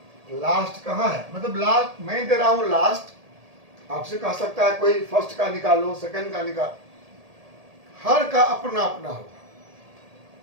लास्ट कहाँ है? मतलब लास्ट मैं दे रहा हूं लास्ट, आपसे कह सकता है कोई फर्स्ट का निकालो, सेकंड का निकाल, हर का अपना अपना होगा।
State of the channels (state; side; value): late; left; 1.8 ms